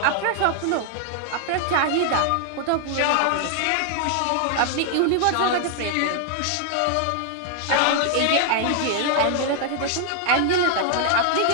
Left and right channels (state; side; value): different; both; correlation 0.00